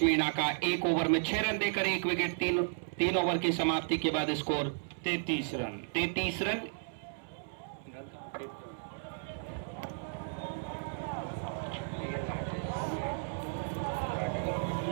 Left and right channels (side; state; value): left; silent; 55 dB below the other